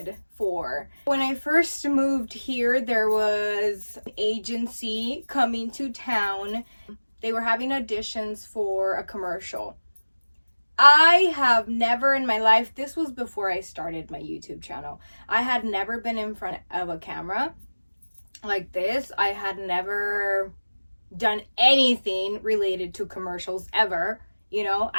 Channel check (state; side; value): inverted; both; correlation -1.00